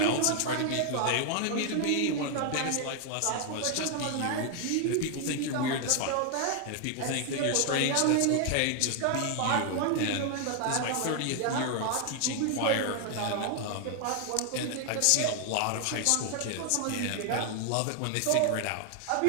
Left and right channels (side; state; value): both; different; correlation 0.00